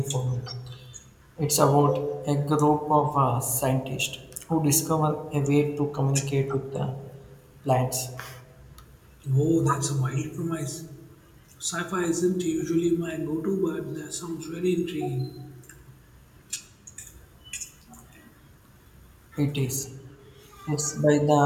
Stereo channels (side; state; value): both; identical; correlation 1.00